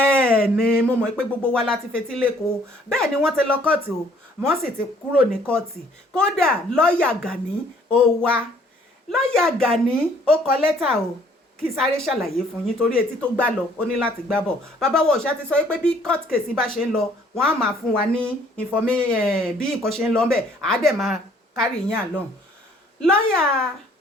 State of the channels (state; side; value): normal; both; correlation 0.60